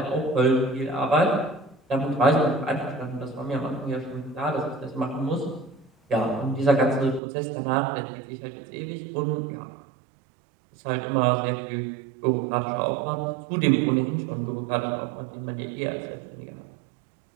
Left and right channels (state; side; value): drops out; left; at 7.2 s